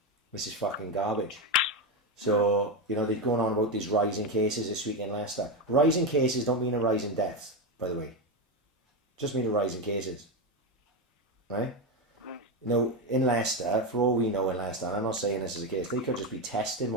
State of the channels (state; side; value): normal; both; correlation 0.12